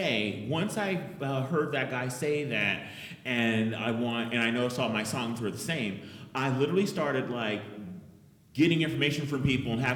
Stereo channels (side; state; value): both; identical; correlation 1.00